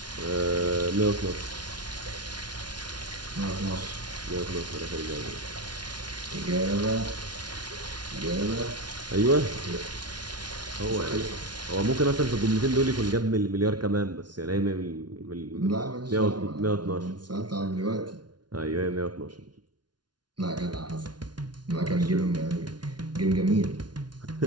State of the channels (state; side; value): late; left; 0.70 ms